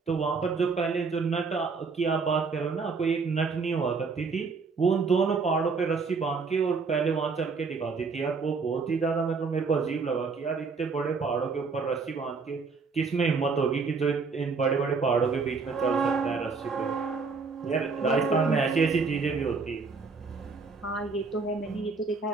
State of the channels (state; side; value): quieter; left; 4.7 dB